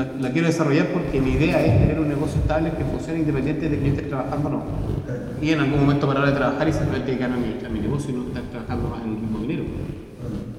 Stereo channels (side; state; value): both; identical; correlation 1.00